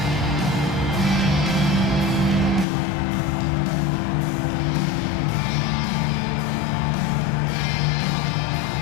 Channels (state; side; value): drops out; right; at 2.7 s